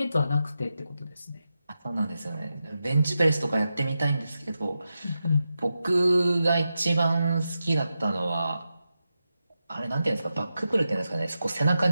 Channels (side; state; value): both; inverted; correlation -0.89